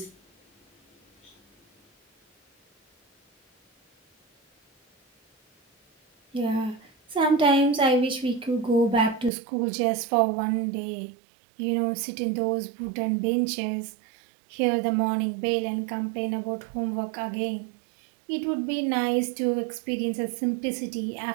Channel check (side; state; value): left; drops out; at 9.3 s